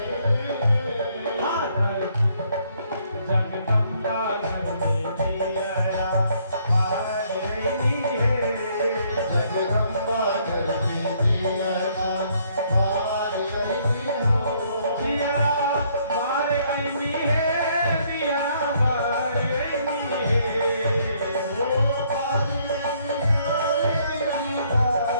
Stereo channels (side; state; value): both; inverted; correlation -0.67